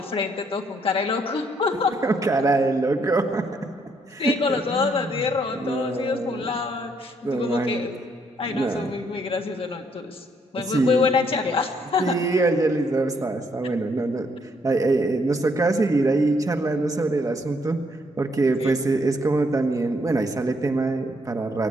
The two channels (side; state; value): both; normal; correlation 0.71